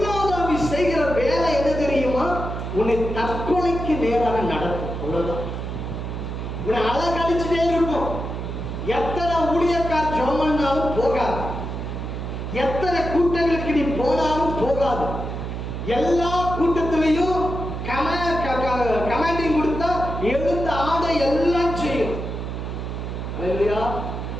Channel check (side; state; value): right; noise; hum, 5 dB below the sound